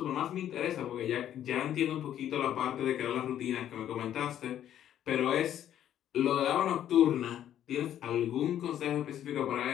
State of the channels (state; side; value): quieter; right; 10.9 dB